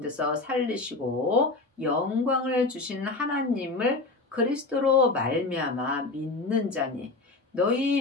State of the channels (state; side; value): quieter; right; 3.4 dB